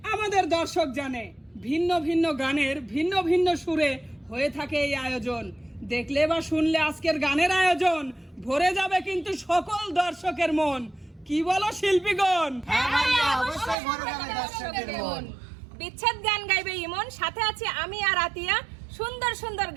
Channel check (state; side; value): drops out; left; at 13.8 s